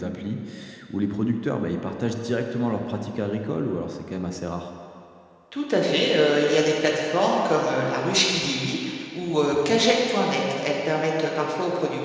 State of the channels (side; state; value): both; identical; correlation 1.00